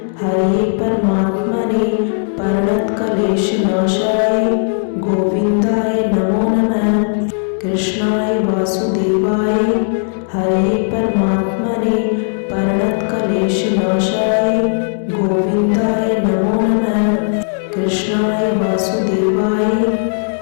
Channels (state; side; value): silent; right; 69 dB below the other